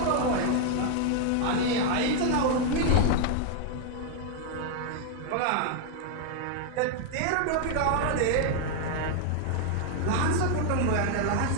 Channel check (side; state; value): both; different; correlation 0.00